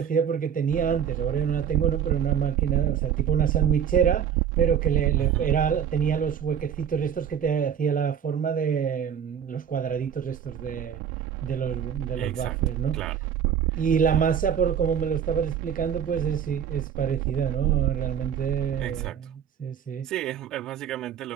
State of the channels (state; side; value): quieter; left; 8.4 dB